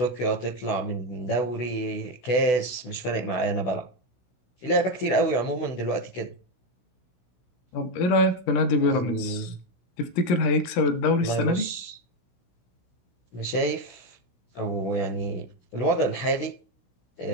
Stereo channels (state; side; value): late; right; 16 ms